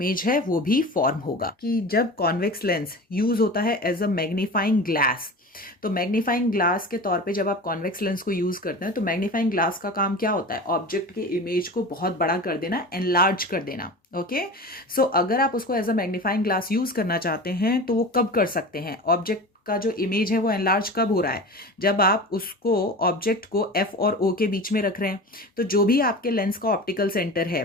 है वो भी फॉर्म होगा। कि जब कॉन्वेक्स लेंस यूज होता है एज अ मैग्नीफाइंग ग्लास, तो मैग्नीफाइंग ग्लास के तौर पे जब आप कॉन्वेक्स लेंस को यूज करते हैं तो मैग्नीफाइंग ग्लास का काम क्या होता है? ऑब्जेक्ट के इमेज को बहुत बड़ा कर देना, एनलार्ज कर देना। ओके। सो अगर आप उसको as a magnifying glass use करना चाहते हैं तो वो कब कर सकते हैं? ऑब्जेक्ट का जो इमेज है वो एनलार्ज कब हो रहा है? जब आप उसको ऑब्जेक्ट को F और O के बीच में रख रहे हैं। तो जो भी आपके लेंस का ऑप्टिकल सेंटर है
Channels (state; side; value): normal; both; correlation 0.33